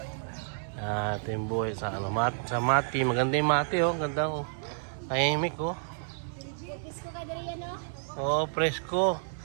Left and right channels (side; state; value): left; silent; 58 dB below the other